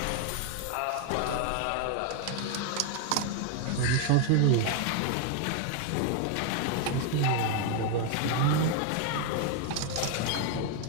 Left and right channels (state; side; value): different; both; correlation 0.01